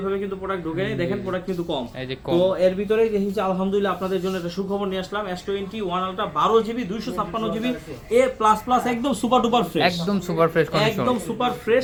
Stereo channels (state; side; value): identical; both; correlation 1.00